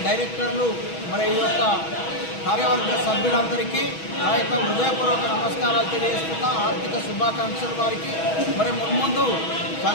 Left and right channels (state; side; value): late; right; 6.2 ms